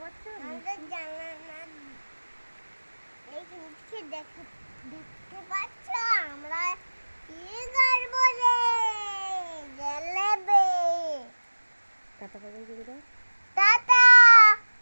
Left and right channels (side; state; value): both; inverted; correlation -1.00